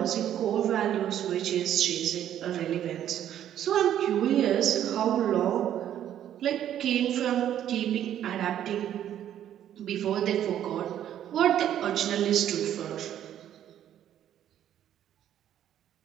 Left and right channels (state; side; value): quieter; left; 10.8 dB